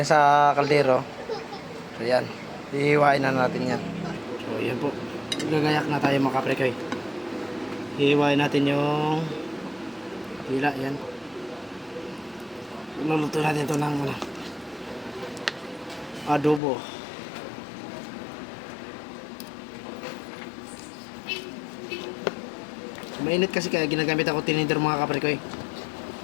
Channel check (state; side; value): drops out; right; at 16.6 s